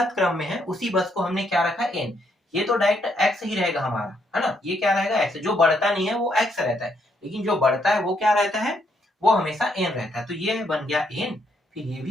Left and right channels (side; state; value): both; normal; correlation 0.74